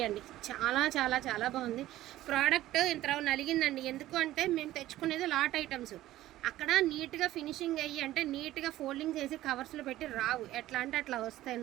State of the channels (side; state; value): left; quieter; 15.0 dB